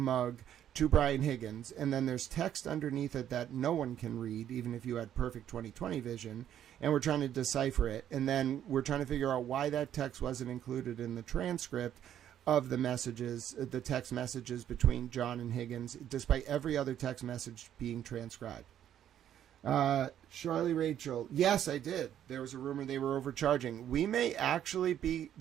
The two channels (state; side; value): quieter; left; 10.5 dB